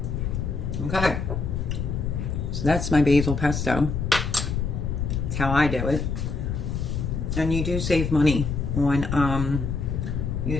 Okay. So that's my basil pesto. That's how I do it. And you do save money on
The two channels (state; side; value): noise; left; rumble, 2 dB below the sound